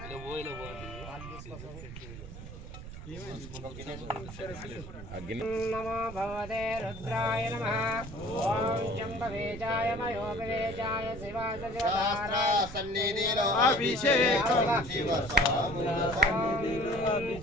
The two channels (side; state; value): right; noise; rumble, 12 dB below the sound